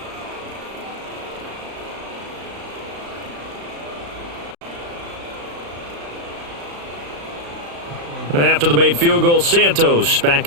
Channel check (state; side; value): late; left; 35 ms